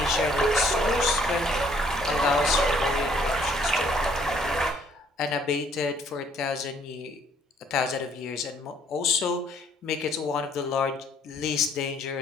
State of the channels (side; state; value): both; normal; correlation 0.63